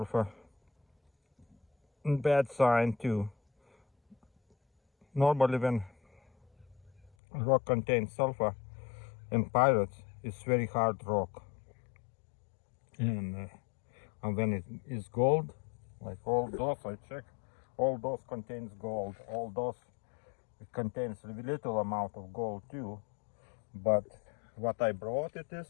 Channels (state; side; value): drops out; right; at 7.1 s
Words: Bad sign too. Normally when rock contains sulfur in pirates, it's very hard rock. And when it is gold, like all those, I check, all those contains gold. All those, it contains a little amount of gold too. But what I brought it